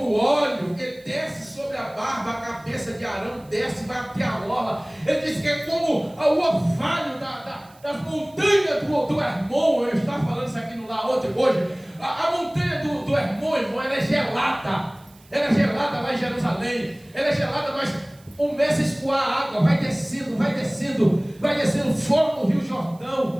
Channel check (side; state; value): right; noise; hiss, 28 dB below the sound